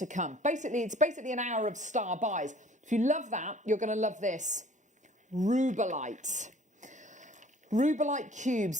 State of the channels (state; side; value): normal; both; correlation 0.52